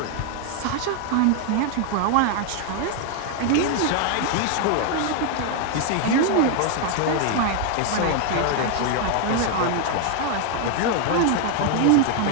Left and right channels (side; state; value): both; different; correlation 0.00